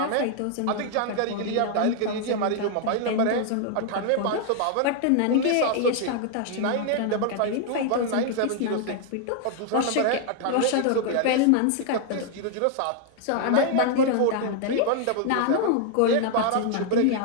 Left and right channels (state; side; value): different; both; correlation 0.00